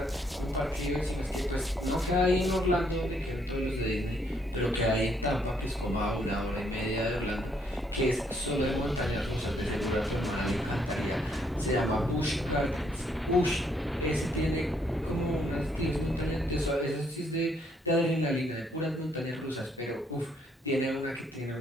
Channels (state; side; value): normal; both; correlation 0.70